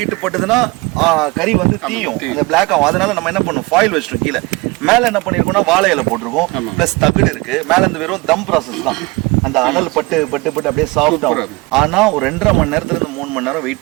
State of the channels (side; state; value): left; quieter; 24.1 dB